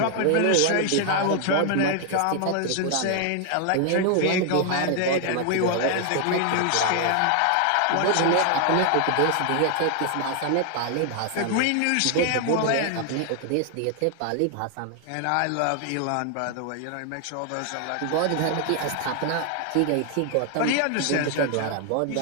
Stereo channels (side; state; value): both; different; correlation 0.00